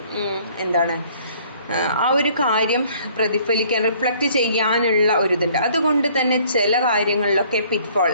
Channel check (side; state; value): both; inverted; correlation -0.58